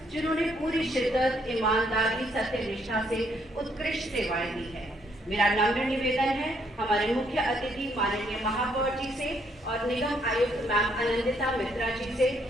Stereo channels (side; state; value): both; normal; correlation 0.71